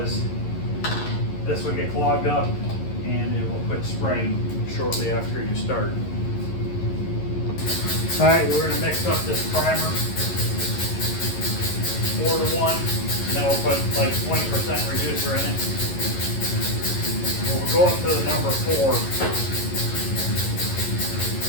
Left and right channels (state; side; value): late; right; 11 ms